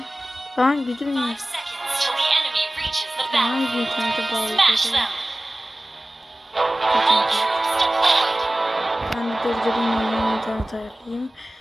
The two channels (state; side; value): normal; both; correlation 0.97